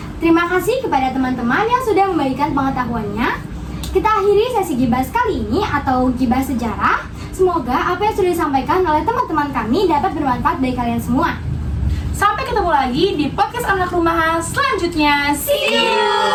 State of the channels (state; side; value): identical; both; correlation 1.00